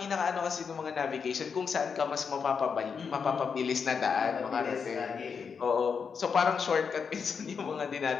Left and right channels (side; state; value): right; quieter; 6.1 dB